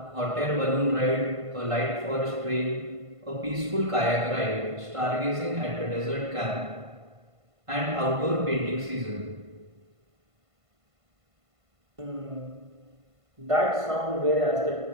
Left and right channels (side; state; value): left; late; 1.5 ms